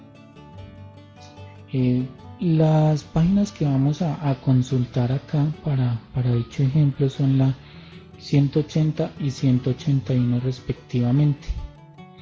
Eh, las páginas que vamos a consultar acá para dicho ejemplo son la 180 y 181 respectivamente.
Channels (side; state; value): both; identical; correlation 1.00